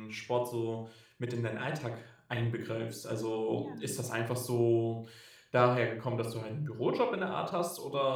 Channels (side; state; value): both; identical; correlation 1.00